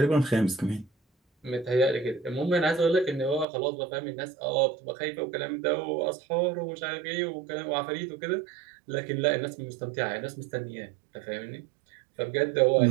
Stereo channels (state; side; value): drops out; left; at 3.5 s